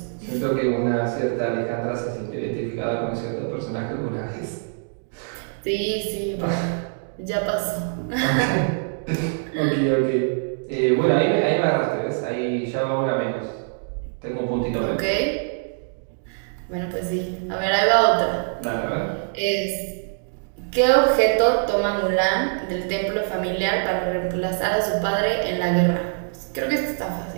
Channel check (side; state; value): left; silent; 62 dB below the other